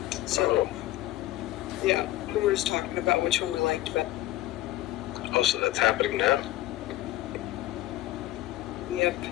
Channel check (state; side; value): quieter; right; 15.7 dB